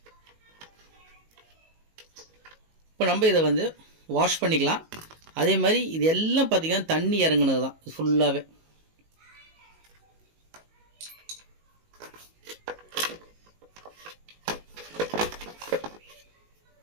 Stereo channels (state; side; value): late; left; 19 ms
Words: இப்போ நம்ம இதை வந்து வாஷ் பண்ணிக்கலாம். அதே மாதிரி இது எல்லாம் பார்த்திங்கன்னா தண்ணி இறங்குனது தான் ஃபுல்லாகவே.